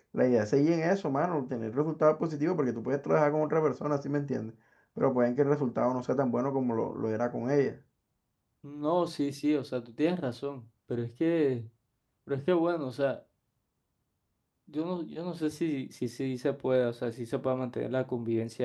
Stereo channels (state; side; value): identical; both; correlation 1.00